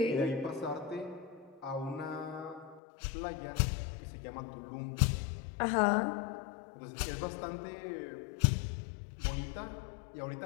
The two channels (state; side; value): drops out; right; at 2.8 s